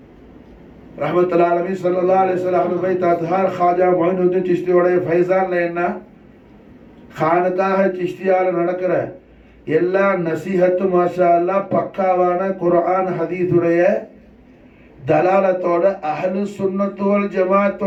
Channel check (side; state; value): both; identical; correlation 1.00